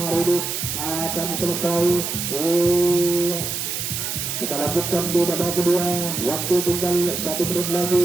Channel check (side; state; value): right; noise; hiss, 3 dB below the sound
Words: ini akan selesai. Kita lanjutkan di babak kedua. Waktu tinggal 1 menit